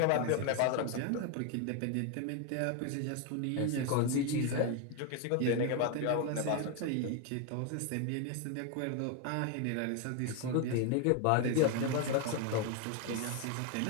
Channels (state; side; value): different; both; correlation 0.01